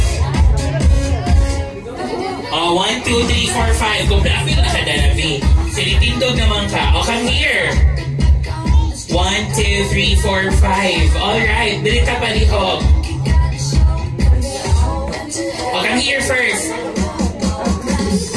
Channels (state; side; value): identical; both; correlation 1.00